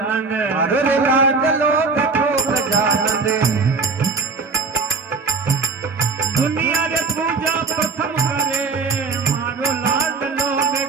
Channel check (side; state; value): left; quieter; 4.3 dB